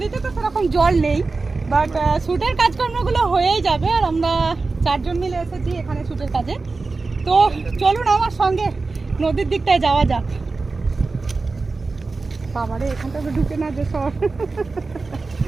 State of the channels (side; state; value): left; quieter; 3.9 dB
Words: তো সেরকম জল নেই, বাট শুটের কাজকর্মগুলো হয়েই যাবে। আর আমরা 4 জন মিলে এসেছি এখানে শুটের কাজে। তো চলুন আমার সঙ্গে নদীর দিকটায় যাওয়া যাক। বাবারে, এখানটা তো ঢুকে না যে সব।